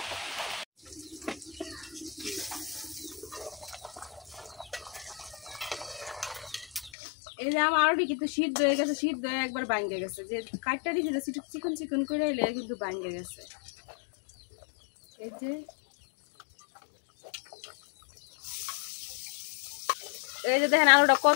এই যে আমার আলুটি কিন্তু সিদ্ধ হয়ে গেছে, সিদ্ধ হয়ে একবার ভাঙ্গে গেছে। যে কাটটা দিয়েছে চিকন চিকন করে এলে কিন্তু ভাঙ্গে গেছে। এই যে দেখেন আলুটা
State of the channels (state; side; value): drops out; right; at 6.9 s